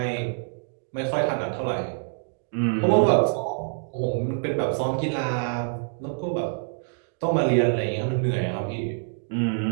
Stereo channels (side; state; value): left; silent; digital silence